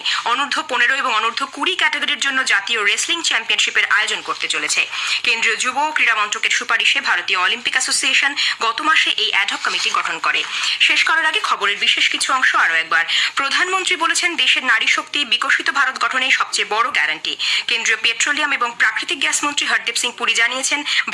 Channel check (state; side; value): identical; both; correlation 1.00